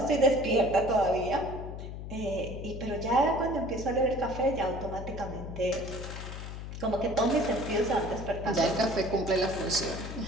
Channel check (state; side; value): noise; left; hum, 8 dB below the sound